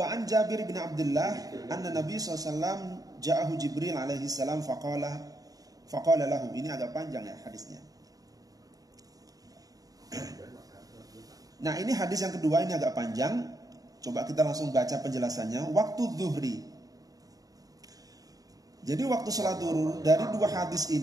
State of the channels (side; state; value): left; late; 0.18 ms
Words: an Jabir bin Abdullah anna Nabi SAW ja'ahu Jibril alaihi salam faqala lahu. Ini agak panjang, ya, hadisnya. Nah, ini hadis yang kedua, ini agak panjang. Coba kita langsung baca penjelasannya. Waktu zuhri. Jadi waktu sholat zuhur dari dua hadis